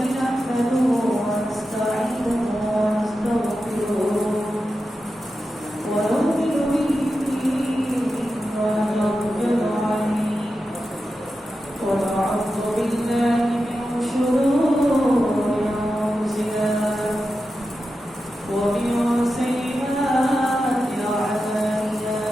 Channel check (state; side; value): normal; both; correlation 0.91